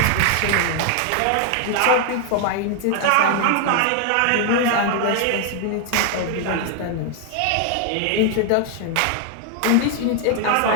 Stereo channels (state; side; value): different; both; correlation 0.00